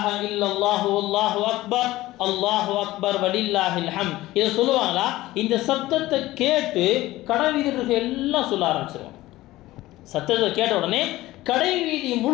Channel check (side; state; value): right; quieter; 17.2 dB